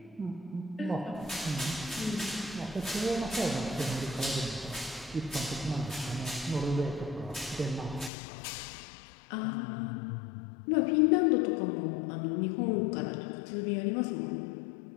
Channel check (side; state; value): right; drops out; at 8.1 s